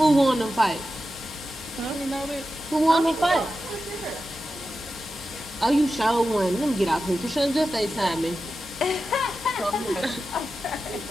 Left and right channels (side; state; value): both; normal; correlation 0.92